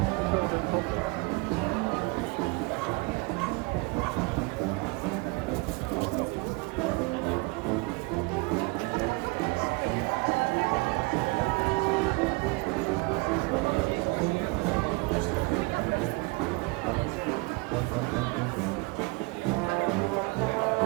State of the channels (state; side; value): quieter; left; 26.3 dB